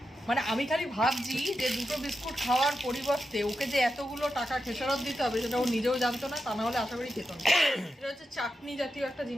মানে আমি খালি ভাবছি যে দুটো বিস্কুট খাওয়ার পরিবর্তে ওকে যে এতগুলো টাকা খেসারত দিতে হবে সেটা ও নিজেও জানতো না, তা না হলে আশা করি খেত না। এটা হচ্ছে চাটনি জাতীয় একটা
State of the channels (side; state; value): both; normal; correlation 0.88